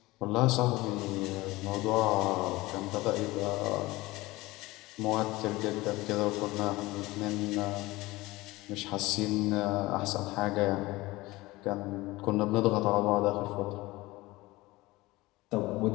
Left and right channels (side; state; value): right; quieter; 20.1 dB